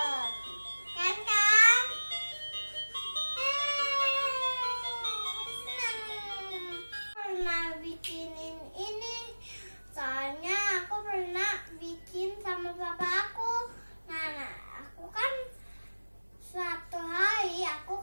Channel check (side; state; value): both; inverted; correlation -1.00